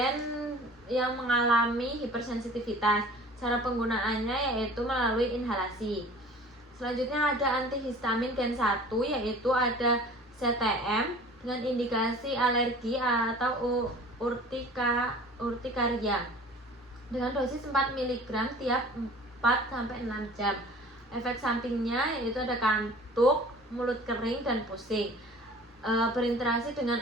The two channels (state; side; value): normal; both; correlation 0.45